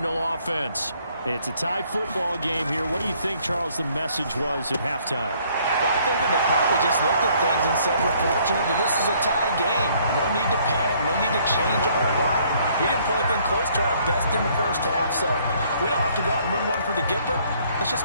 offense. It's a tie football game here. What do you think, Charles, the message was at halftime? Well, I think that they probably just looked at things and said, we're fortunate that this is a tie game. No need to panic, no need to change a whole lot. We didn't play anything close to our best in the first half, so we don't have to go out and win one for the Gipper. Let's just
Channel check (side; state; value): both; inverted; correlation -0.63